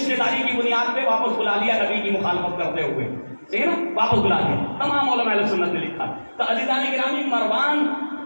داری کی بنیاد پہ واپس بلا لیا نبی کی مخالفت کرتے ہوئے، ٹھیک ہے نا، واپس بلا لیا. تمام علماء اہل سنت نے لکھا. تو عزیزان گرامی مروان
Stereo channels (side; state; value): both; inverted; correlation -1.00